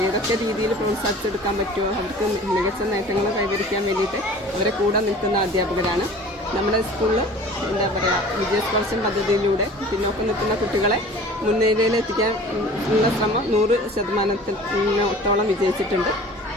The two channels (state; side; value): normal; both; correlation 0.44